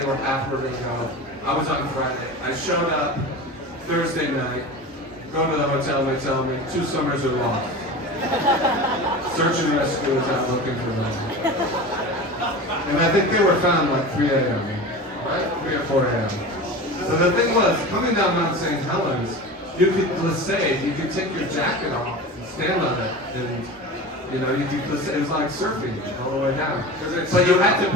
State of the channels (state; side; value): normal; both; correlation 0.31